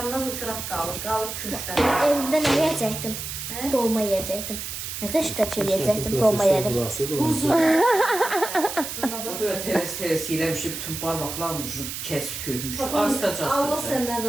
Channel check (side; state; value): right; noise; hiss, 6 dB below the sound